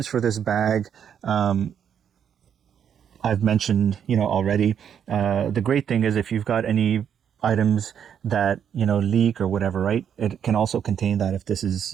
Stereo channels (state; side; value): quieter; left; 8.5 dB